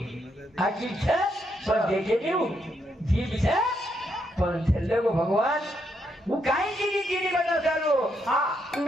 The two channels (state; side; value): normal; both; correlation 0.78